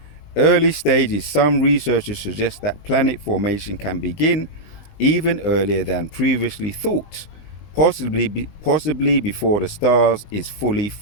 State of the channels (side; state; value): right; late; 20 ms